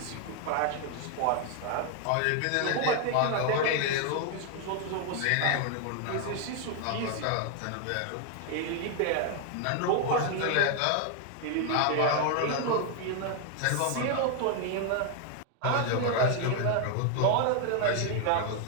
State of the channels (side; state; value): both; different; correlation 0.00